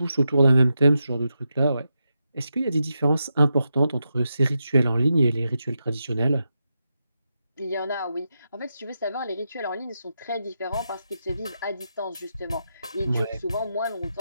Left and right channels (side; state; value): both; inverted; correlation -0.86